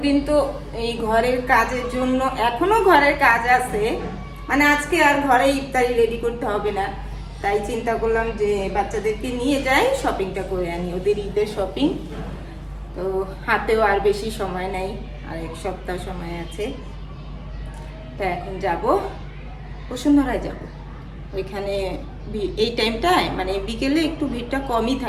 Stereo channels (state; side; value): identical; both; correlation 1.00